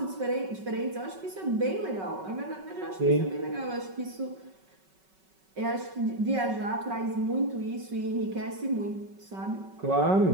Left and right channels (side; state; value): left; late; 5.3 ms